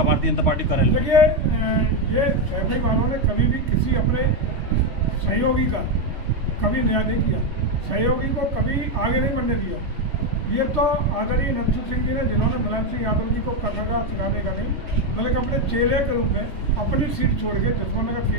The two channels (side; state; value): left; late; 3.3 ms